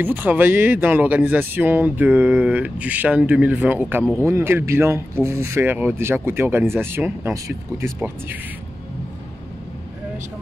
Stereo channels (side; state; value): both; normal; correlation 0.94